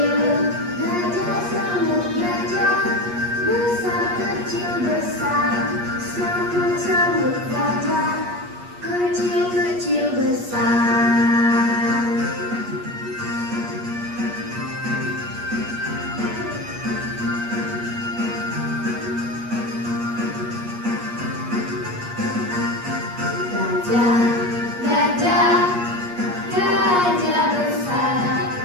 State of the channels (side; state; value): left; late; 8.4 ms